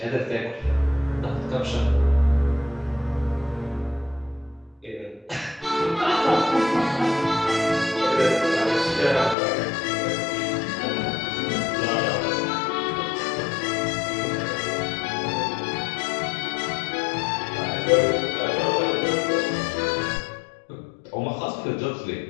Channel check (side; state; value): right; drops out; at 9.3 s